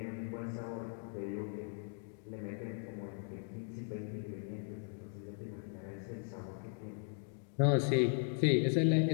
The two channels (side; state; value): right; silent; 52 dB below the other